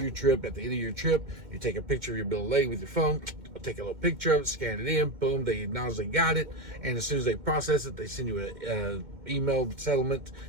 trip. At the end of your trip, you take a picture of your bill of lading with your phone, take a little picture of it, scan it in, boom, they acknowledge they got it, and as soon as they process it, they send you an email settlement,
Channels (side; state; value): left; late; 2.1 ms